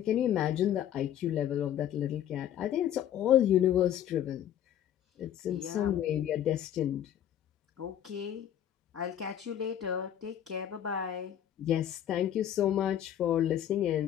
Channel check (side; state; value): right; quieter; 10.6 dB